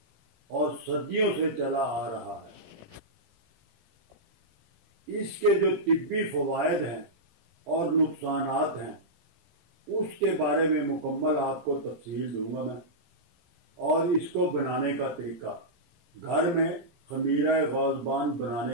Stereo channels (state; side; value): late; left; 18 ms